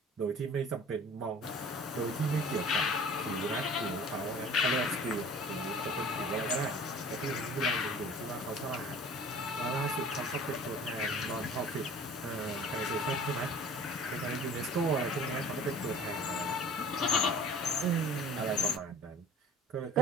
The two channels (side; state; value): both; normal; correlation 0.45